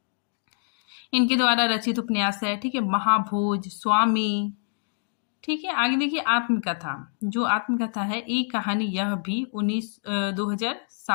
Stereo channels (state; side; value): silent; right; digital silence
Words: इनके द्वारा रचित उपन्यास है, ठीक है। महाभोज, स्वामी, ठीक है। आगे देखिए, आत्मकथा, जो आत्मकथा है एक कहानी यह भी